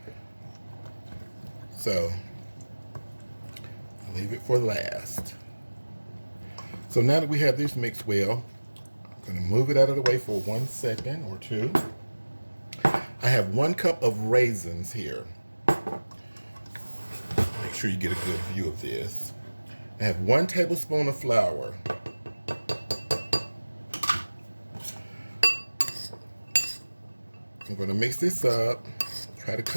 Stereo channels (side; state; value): both; inverted; correlation -1.00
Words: So, I'll leave it for last. So now that we have this mixed well, I'm going to move it out of the way for 1 second or two. I have 1 cup of raisins here. Make sure you get a good view of this. I have 1 tablespoon of flour. I'm going to mix this up. Try to